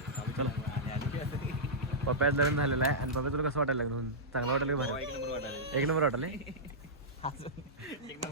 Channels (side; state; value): both; normal; correlation -0.12